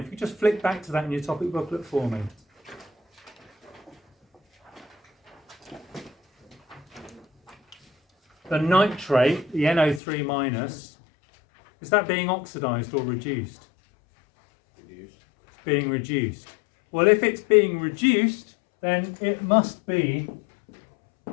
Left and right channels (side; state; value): right; drops out; at 10.0 s